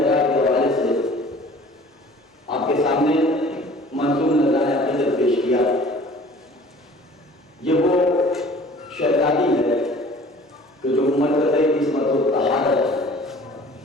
کے حوالے سے آپ کے سامنے منظور نذرانہ عقیدت پیش کیا. یہ وہ شہزادی ہے کہ جو مرکز عصمت و طہارت ہے.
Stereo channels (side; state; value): both; normal; correlation 0.49